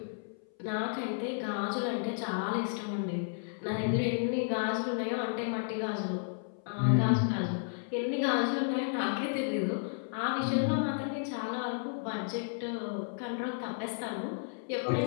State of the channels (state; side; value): silent; right; 56 dB below the other